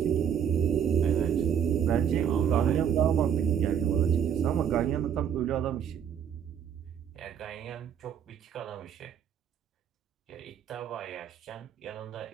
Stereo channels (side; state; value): left; quieter; 8.4 dB